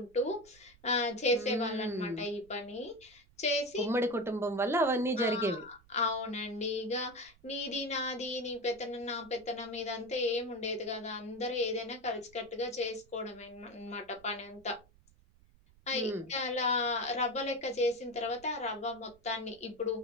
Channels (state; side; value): noise; right; rumble, 27 dB below the sound